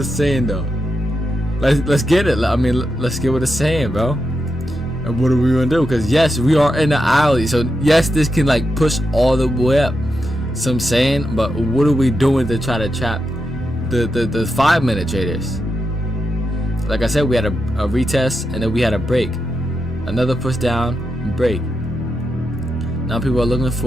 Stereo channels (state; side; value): normal; both; correlation 0.86